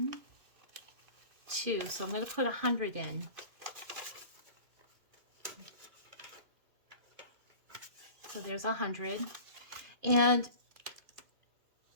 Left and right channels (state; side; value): late; left; 2.5 ms